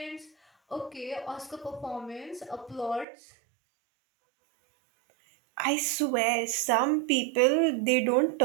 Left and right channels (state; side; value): drops out; left; at 3.1 s